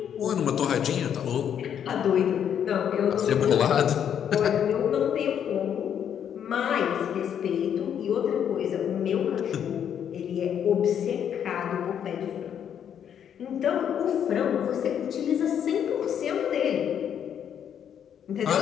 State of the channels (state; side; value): quieter; right; 8.9 dB